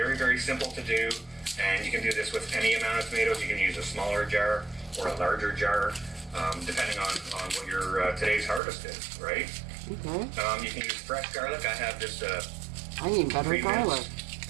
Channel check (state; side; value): drops out; left; at 8.6 s